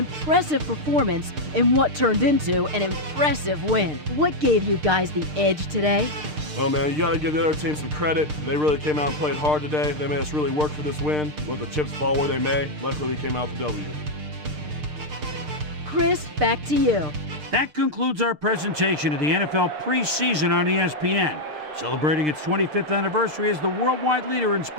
performance in what turned into an impressive win. What gave you guys the edge today? Well, man, you got to give the other team some credit. They really came out and played hard today. They made us really work for this win. Let the chips fall where they may. Luckily, we came out with the W. Chris, back to you. That concludes our presentation of the NFL preseason on ESPN, celebrating its 25th anniversary as the worldwide leader in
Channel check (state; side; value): late; left; 6.6 ms